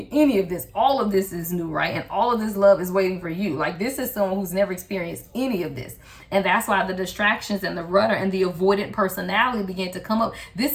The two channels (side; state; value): both; identical; correlation 1.00